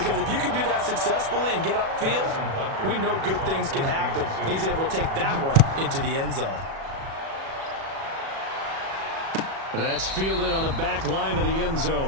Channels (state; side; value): late; left; 37 ms